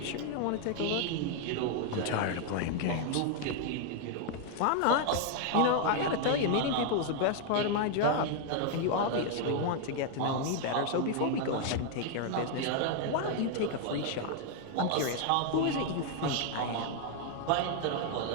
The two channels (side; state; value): both; different; correlation 0.00